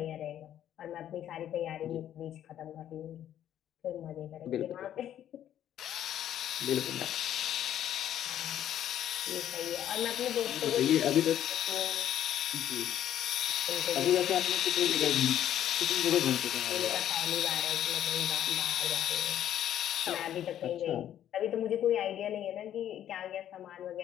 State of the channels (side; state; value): right; quieter; 11.0 dB